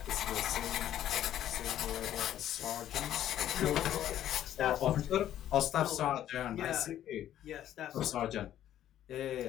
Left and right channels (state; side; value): quieter; right; 11.7 dB